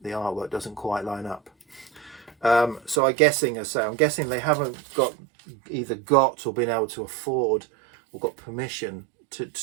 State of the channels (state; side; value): drops out; left; at 3.0 s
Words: the artwork doesn't quite line up. So I'm guessing they haven't either got or been able to afford or got permission